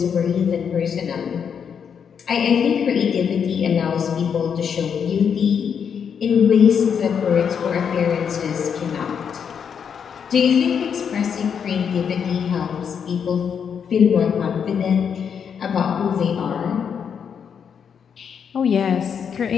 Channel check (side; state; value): right; quieter; 7.3 dB